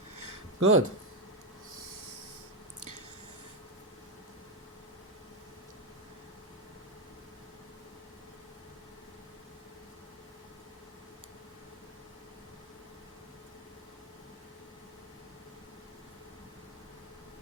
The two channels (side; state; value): both; normal; correlation 0.07